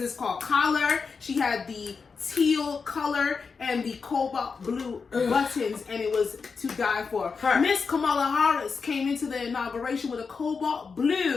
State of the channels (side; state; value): right; quieter; 5.2 dB